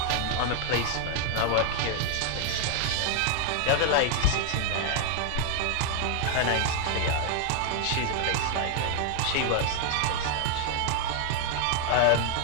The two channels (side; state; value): both; different; correlation 0.00